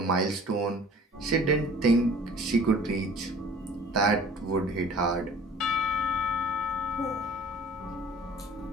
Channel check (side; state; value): both; normal; correlation 0.48